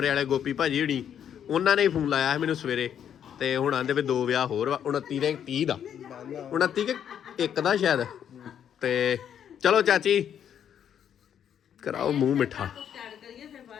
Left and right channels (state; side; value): quieter; right; 9.1 dB